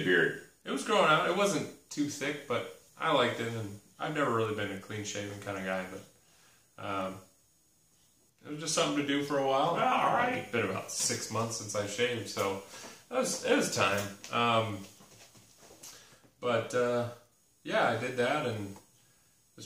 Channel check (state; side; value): identical; both; correlation 1.00